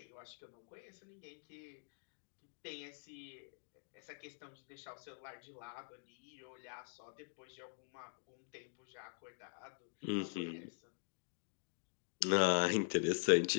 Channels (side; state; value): right; silent; digital silence